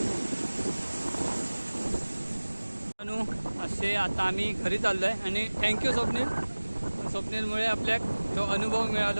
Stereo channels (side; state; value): both; inverted; correlation -1.00